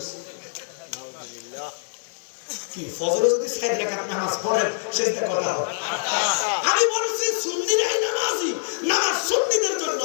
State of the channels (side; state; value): right; silent; digital silence